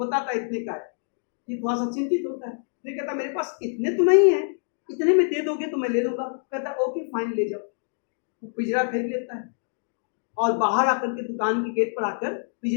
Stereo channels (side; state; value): right; silent; digital silence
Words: है इतने का है। ये थोड़ा सा चिंतित होता है, फिर कहता मेरे पास इतने तो नहीं है, इतने में दे दोगे तो मैं ले लूंगा। कहता ओके फाइन, ले जाओ। वो पिंजरा फेंक लेता है और बाहर आकर के दुकान के गेट पर आकर